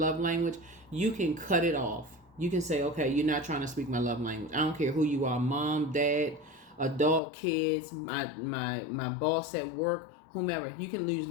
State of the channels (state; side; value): drops out; right; at 7.2 s